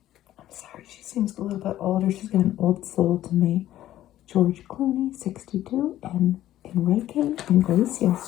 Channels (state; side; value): quieter; right; 13.3 dB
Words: sorry, she seems a little bit older. She's got an old soul to me. George Clooney, 62, and Enrique